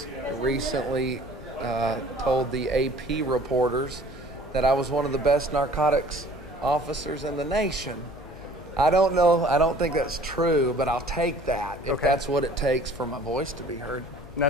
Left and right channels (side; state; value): left; noise; hum, 19 dB below the sound